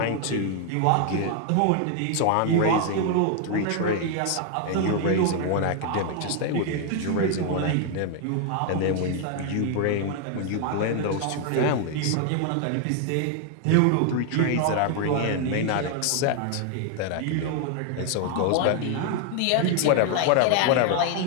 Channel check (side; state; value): both; different; correlation 0.00